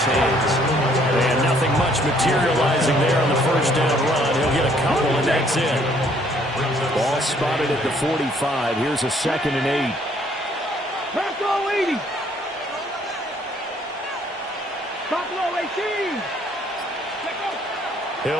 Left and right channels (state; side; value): normal; both; correlation 0.63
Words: hands. And nothing much materializing there on the first down run. He'll get a couple, and that's it. Ball spotted at the 45. Here's a 2nd and 8. Buffalo 80. Buffalo 18.